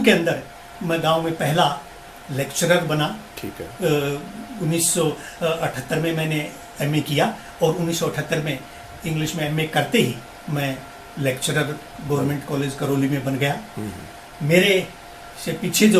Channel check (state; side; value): identical; both; correlation 1.00